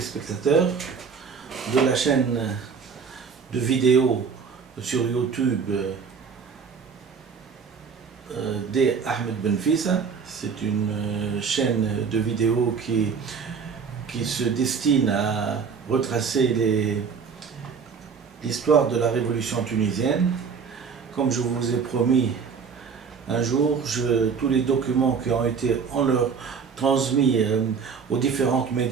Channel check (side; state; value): left; quieter; 5.9 dB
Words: de la chaîne de vidéos sur YouTube des Ahmed Benfissa. C'est une chaîne de vidéos qui se destine à retracer l'histoire de la révolution tunisienne. Comme je vous ai promis un jour, tous les documents qui ont été transmis aux différents